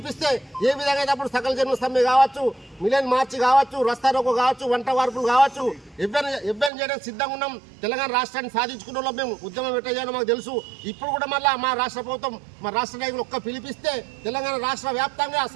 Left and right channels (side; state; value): left; drops out; at 6.7 s